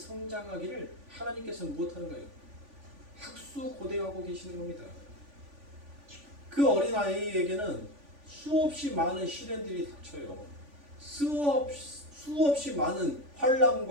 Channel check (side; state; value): left; late; 3.5 ms